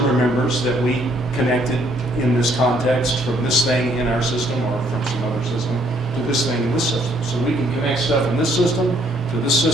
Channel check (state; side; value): normal; both; correlation 0.66